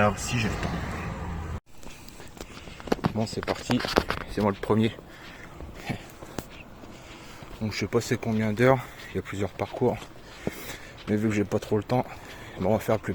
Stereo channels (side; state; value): both; identical; correlation 1.00